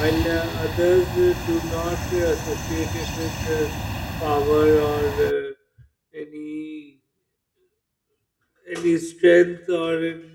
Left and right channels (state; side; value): identical; both; correlation 1.00